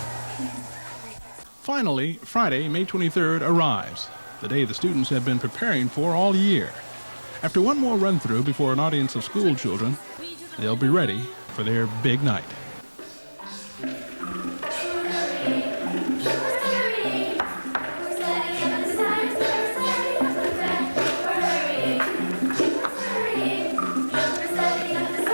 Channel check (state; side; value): inverted; both; correlation -1.00